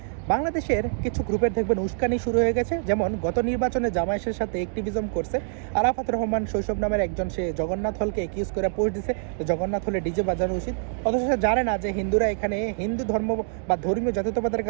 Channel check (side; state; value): left; silent; digital silence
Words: বাংলাদেশের কিছু গ্রুপের দেখবেন উস্কানি শুরু হয়ে গেছে। যেমন গত নির্বাচনে জামায়াতের সাথে অ্যাক্টিভিজম করছে আরাফাত রহমান শৈশব নামের একজন, সে জগন্নাথ হলকে একিউজ করে পোস্ট দিছে জগন্নাথ হলে ডিজে বাজানো উচিত, অথচ সে জানে না যে হিন্দুরা এখানে হিন্দু ধর্ম বা ধর্মীয় জাতীয়তাবাদের